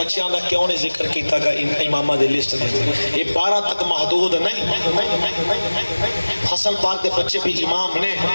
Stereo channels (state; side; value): inverted; both; correlation -1.00